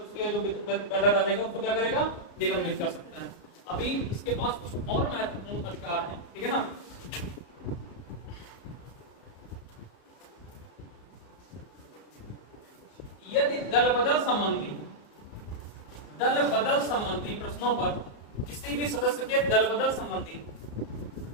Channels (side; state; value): right; late; 34 ms